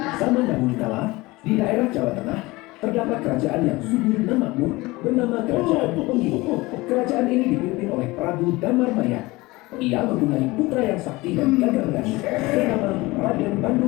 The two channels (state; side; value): quieter; right; 21.4 dB